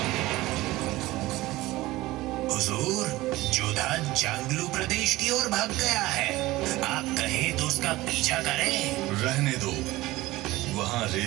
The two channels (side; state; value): left; quieter; 18.4 dB